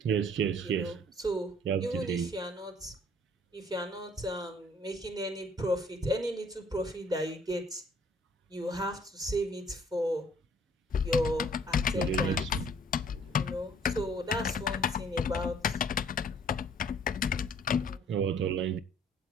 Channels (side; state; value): both; normal; correlation 0.57